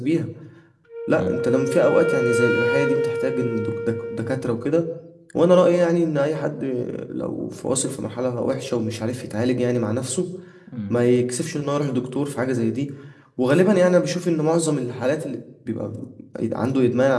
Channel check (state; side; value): identical; both; correlation 1.00